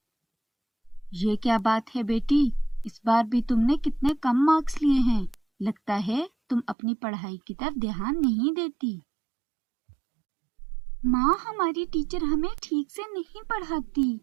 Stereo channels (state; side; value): drops out; left; at 6.8 s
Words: ये क्या बात है बेटी, इस बार भी तुमने कितने कम मार्क्स लिए हैं। लगता है तुम अपनी पढ़ाई की तरफ ध्यान नहीं देती। माँ, हमारी टीचर हमें ठीक से नहीं पढ़ाती।